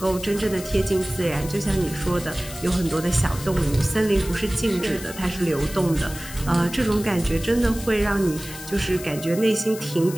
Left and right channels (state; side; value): noise; left; hiss, 13 dB below the sound